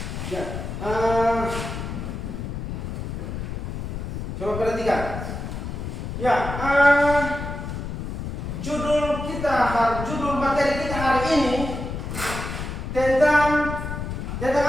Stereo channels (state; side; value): noise; left; rumble, 5 dB below the sound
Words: Ya. Coba perhatikan. Ya, judul materi kita hari ini tentang